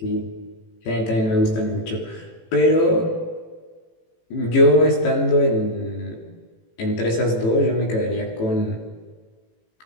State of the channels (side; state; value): right; late; 18 ms